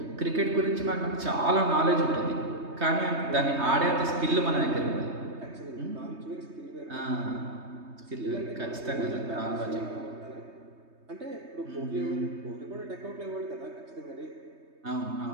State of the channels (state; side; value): late; left; 3.2 ms